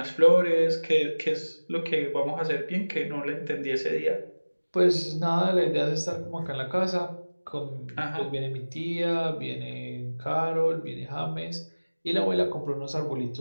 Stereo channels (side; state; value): both; inverted; correlation -1.00